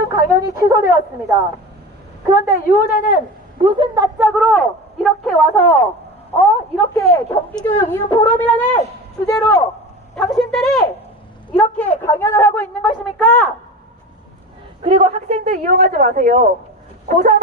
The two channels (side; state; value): both; normal; correlation 0.30